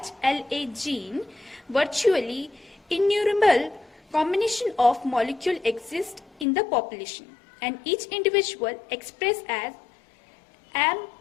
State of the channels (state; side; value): drops out; right; at 6.5 s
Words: gene, virtually innumerable combination of molecules exist in the population, and each individual expressed as